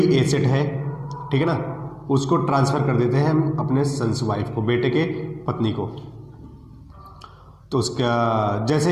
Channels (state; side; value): identical; both; correlation 1.00